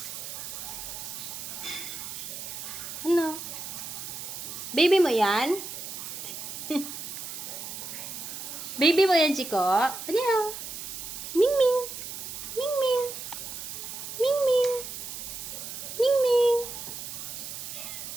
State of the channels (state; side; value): noise; right; hiss, 8 dB below the sound